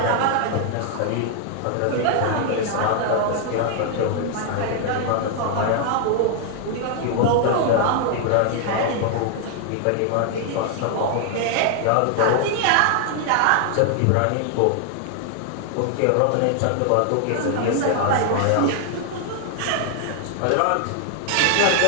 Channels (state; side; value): different; both; correlation 0.00